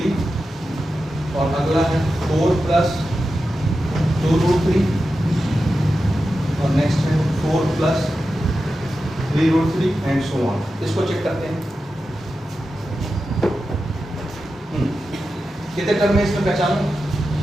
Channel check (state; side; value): normal; both; correlation 0.91